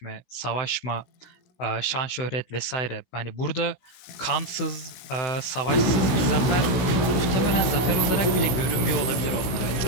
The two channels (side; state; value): right; late; 16 ms